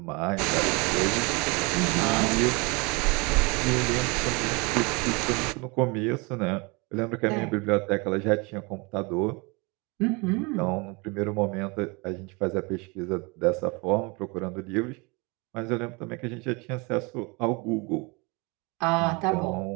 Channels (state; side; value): quieter; left; 28.3 dB